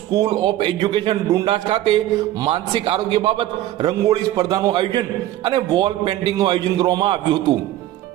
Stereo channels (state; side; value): quieter; left; 14.0 dB